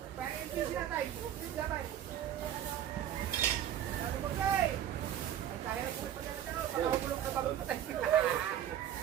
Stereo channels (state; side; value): quieter; left; 10.7 dB